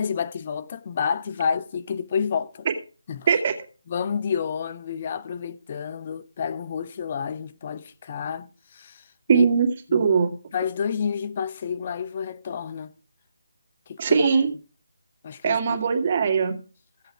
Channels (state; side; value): inverted; both; correlation -0.75